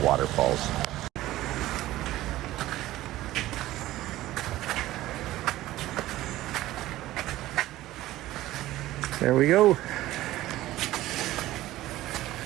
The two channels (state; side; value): quieter; left; 15.8 dB